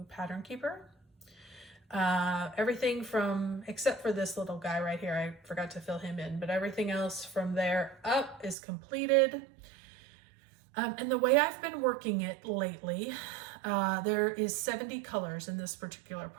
Pattern Keeper. Everything from, except for this little guy right here, I forgot to fill him in, but everything else from there up is completed. And the way I've been working it lately, there is 70 colors in this particular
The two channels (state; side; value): drops out; left; at 8.6 s